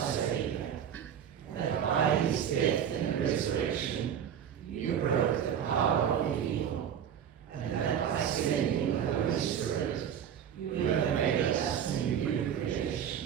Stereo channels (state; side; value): quieter; left; 8.9 dB